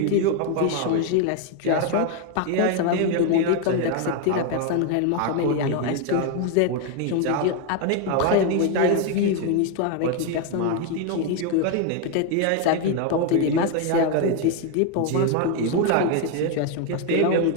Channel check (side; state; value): both; different; correlation 0.01